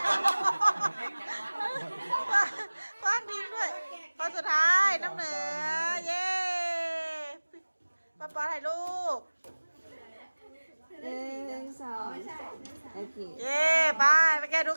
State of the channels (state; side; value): inverted; both; correlation -1.00